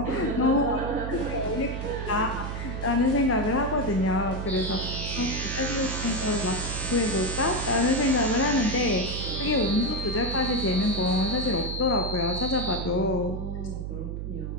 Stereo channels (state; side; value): noise; right; hum, 5 dB below the sound